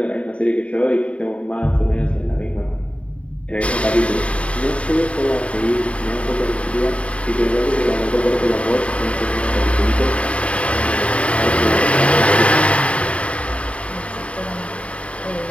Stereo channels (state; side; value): late; right; 0.063 ms